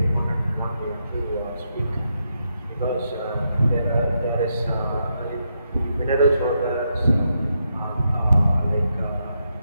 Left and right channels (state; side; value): inverted; both; correlation -0.81